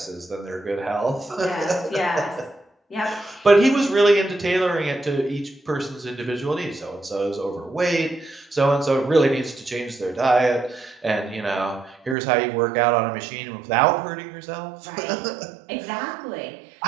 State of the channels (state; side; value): drops out; left; at 12.2 s